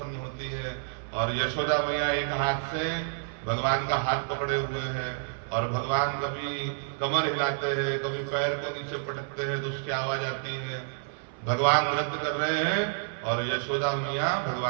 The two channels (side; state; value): left; silent; 56 dB below the other